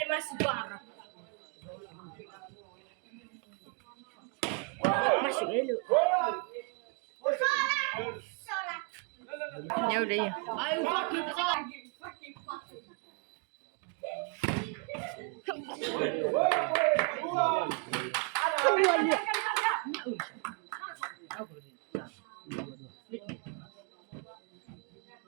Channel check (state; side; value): quieter; left; 36.7 dB